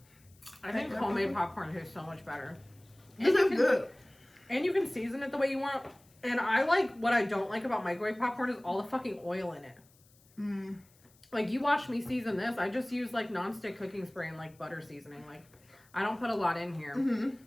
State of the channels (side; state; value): left; noise; hiss, 30 dB below the sound